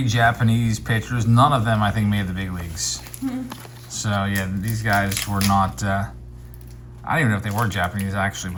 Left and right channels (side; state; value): both; identical; correlation 1.00